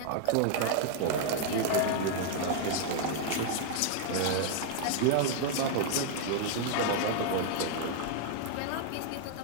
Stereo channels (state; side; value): different; both; correlation 0.00